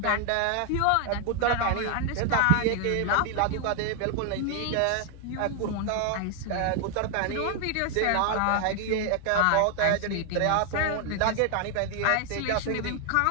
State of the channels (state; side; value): different; both; correlation 0.00